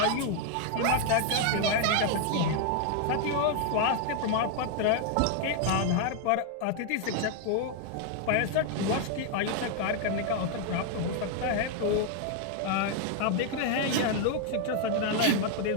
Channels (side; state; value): both; different; correlation 0.00